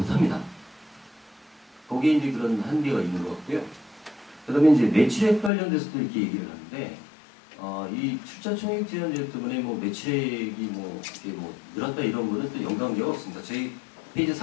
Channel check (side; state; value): right; drops out; at 5.5 s